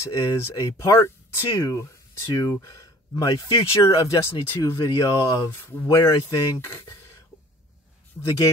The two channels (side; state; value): both; normal; correlation 0.50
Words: a part 2 to my future of Destiny 2 video of where I think the